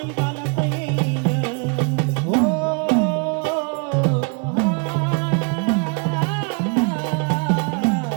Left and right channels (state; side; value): quieter; left; 36.0 dB